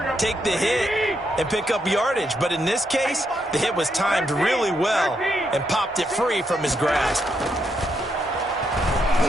take the hit, and pick up yardage. But in this case, the hit was timed really well and popped it free from his grasp.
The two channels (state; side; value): normal; both; correlation 0.79